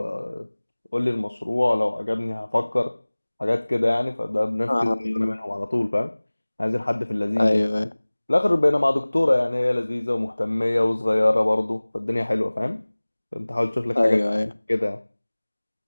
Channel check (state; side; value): inverted; both; correlation -1.00